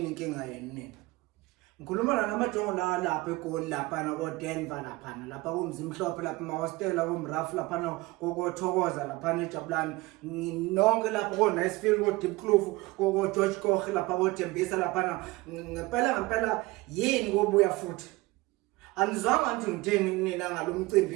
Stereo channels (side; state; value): left; quieter; 21.3 dB